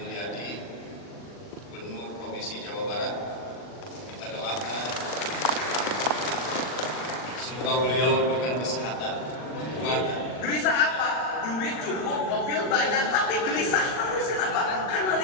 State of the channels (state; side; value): late; right; 40 ms